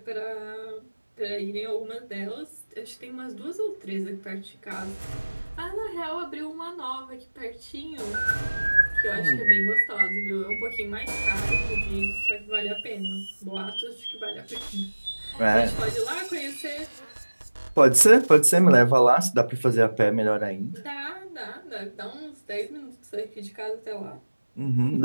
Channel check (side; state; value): both; inverted; correlation -1.00